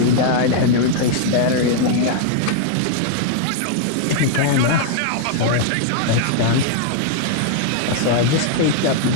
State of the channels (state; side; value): different; both; correlation -0.01